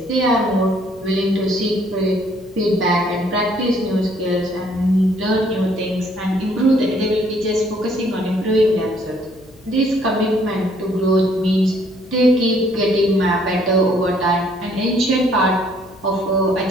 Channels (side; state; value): left; noise; hum, 26 dB below the sound